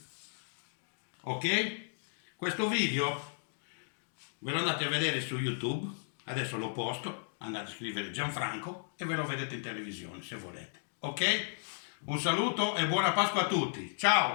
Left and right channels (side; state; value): right; silent; digital silence